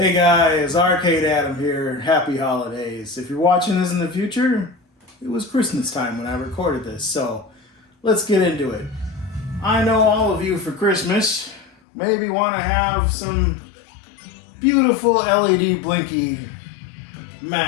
guys, Arcade Adam here. Happy holidays. If you're watching this in the future, it was Christmas time when I recorded this, so let's get into it. I know all of you for Christmas maybe want to have some beautiful LEDBlinky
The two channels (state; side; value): drops out; right; at 11.8 s